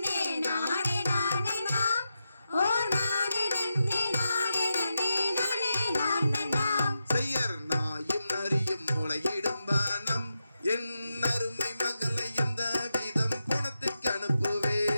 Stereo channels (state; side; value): inverted; both; correlation -0.88